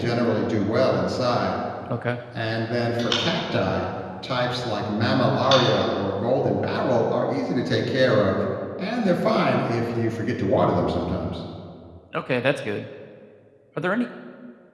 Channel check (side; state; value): both; identical; correlation 1.00